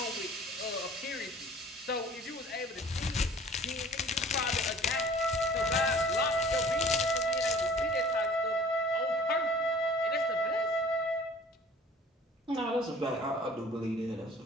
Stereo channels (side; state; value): both; normal; correlation 0.48